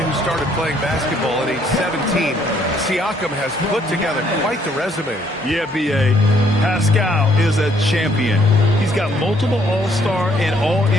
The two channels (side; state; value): both; normal; correlation 0.67